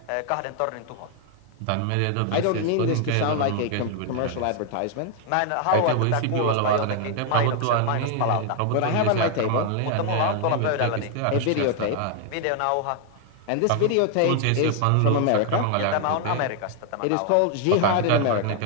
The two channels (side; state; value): both; different; correlation 0.00